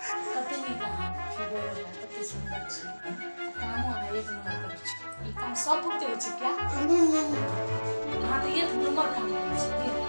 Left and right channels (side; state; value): both; inverted; correlation -1.00